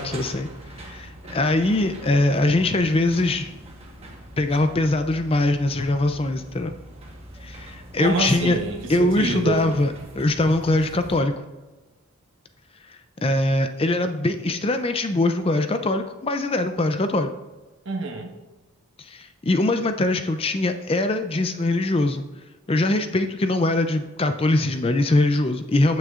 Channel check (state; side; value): normal; both; correlation 0.65